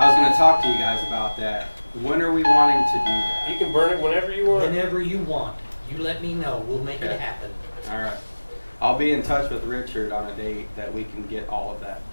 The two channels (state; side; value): inverted; both; correlation -1.00